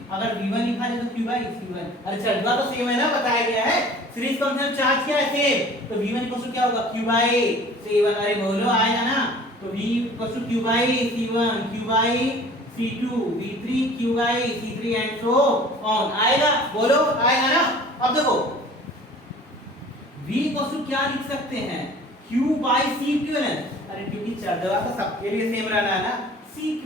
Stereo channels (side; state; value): both; normal; correlation 0.47